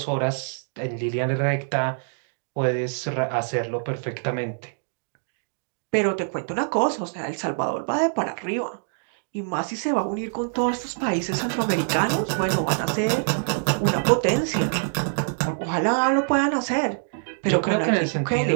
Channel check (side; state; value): left; silent; digital silence